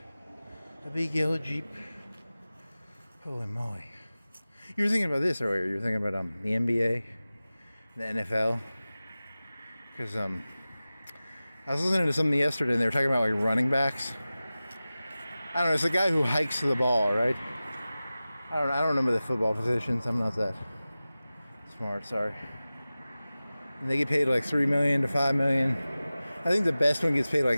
A big yellow Jeep. Holy moly. You were thinking about this earlier. You were thinking about the NBA, the NFL. Because I was listening to something yesterday and they were talking about like running backs. I don't know, it's the guy who hikes the ball, right? I don't remember the football positions. I'm not that smart, sorry. And they get paid like $3 million to $5 million. I think the best one gets paid like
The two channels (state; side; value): inverted; both; correlation -0.96